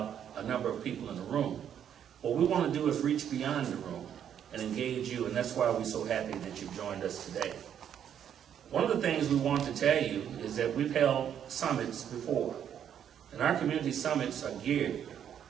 a number of people in the room. What we want to do is reach beyond the room and engage you, and that's why we're so happy that you've joined us today. One of the things we want to tell you is that we've held summits before, and our community summits are geared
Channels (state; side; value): quieter; left; 9.2 dB